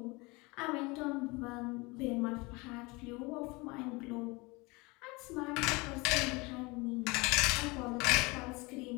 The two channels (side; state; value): right; quieter; 25.4 dB